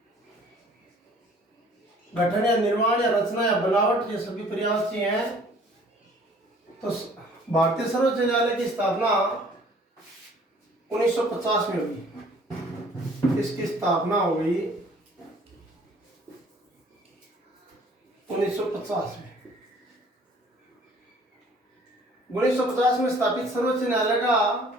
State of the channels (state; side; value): normal; both; correlation 0.54